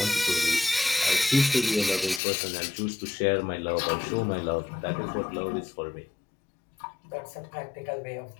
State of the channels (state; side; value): drops out; right; at 2.2 s